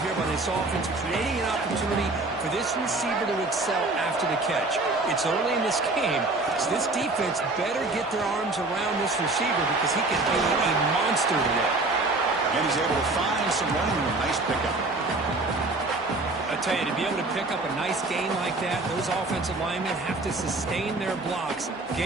here by this offense, creating an opportunity for this receiver to excel after the catch. It's early in this game, so this defense better get their arms around this receiver because he can be a monster today. And he's able to find some running room. Nice pickup. I tell you, to be able to pick up a nice gain like that, those offensive linemen have to sustain their blocks.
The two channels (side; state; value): left; quieter; 3.1 dB